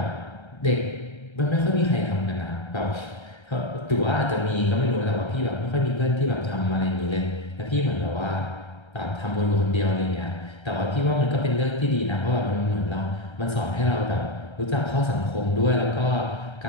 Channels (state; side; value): late; right; 1.3 ms